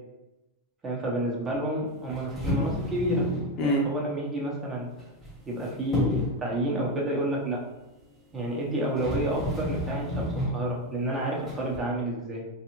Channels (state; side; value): normal; both; correlation 0.13